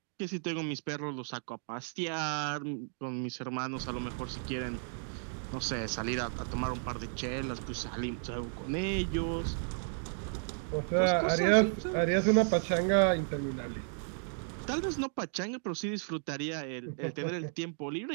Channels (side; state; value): left; silent; digital silence